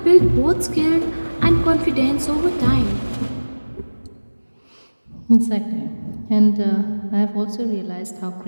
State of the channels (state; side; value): inverted; both; correlation -1.00